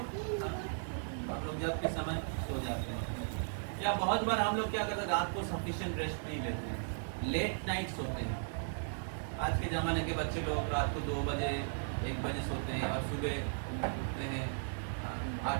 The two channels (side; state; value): left; silent; digital silence